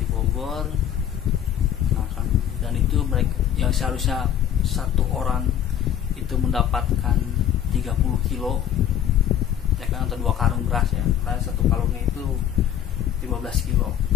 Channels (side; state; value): right; quieter; 10.2 dB